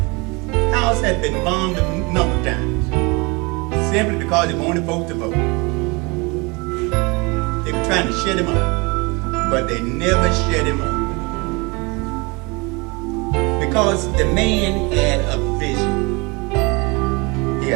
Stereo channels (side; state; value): left; quieter; 27.5 dB